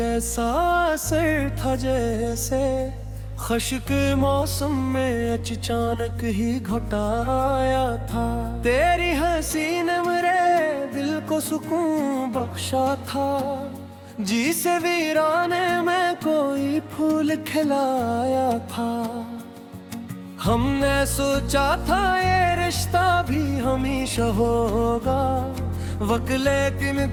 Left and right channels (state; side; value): identical; both; correlation 1.00